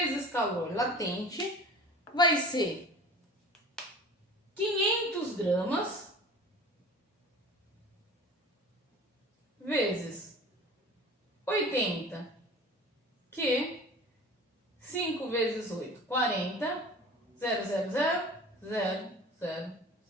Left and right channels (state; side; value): normal; both; correlation 0.40